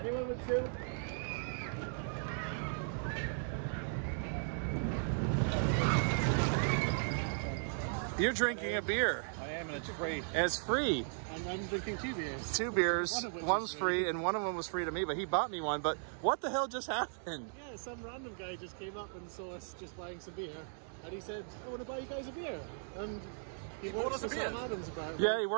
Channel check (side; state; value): left; silent; digital silence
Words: with 2? You're drinking a beer. I am, and it's free. And it's free. And I'm drinking 2 beers. 2 beers. One of which One's is free, and one of them was free to me, but he bought me one. But what the hell just happened? Yeah, some random guy just came up and saw us just buying some beer. And he said, I want to buy you guys a beer. And he works for Sam Adams apparently. Yeah, he